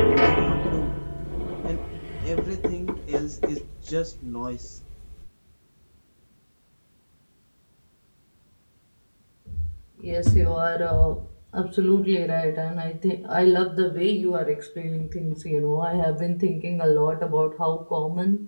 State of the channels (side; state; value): both; inverted; correlation -1.00